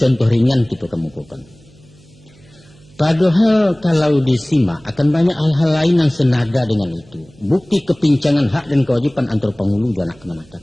ringan kita kemukakan. Padahal kalau disimak akan banyak hal-hal lain yang senada dengan itu. Bukti kepincangan hak dan kewajiban antara penghulu dan anak kemenatan.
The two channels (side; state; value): right; noise; hum, 27 dB below the sound